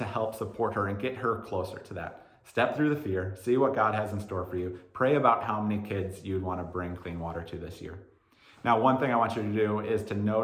help support her and get her closer to that. Step through the fear, see what God has in store for you. Pray about how many kids you'd want to bring clean water to this year. Now, one thing I want you to do is to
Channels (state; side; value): identical; both; correlation 1.00